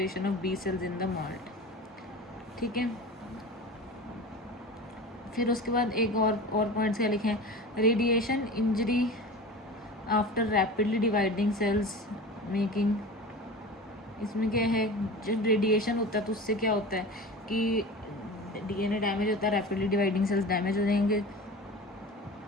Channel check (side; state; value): both; normal; correlation 0.33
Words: of B cells in the MALT. ठीक है, फिर उसके बाद एक और पॉइंट्स क्या लिखे हैं, radiation injury after rapidly dividing cells making. इसमें क्या है, जब रेडिएशन होता है तो उससे क्या होता है कि DNA डैमेज होता है, रैपिडली डिवाइडिंग सेल्स डैमेज हो जाएंगे,